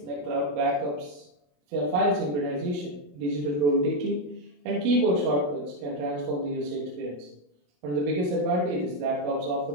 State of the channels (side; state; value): left; late; 27 ms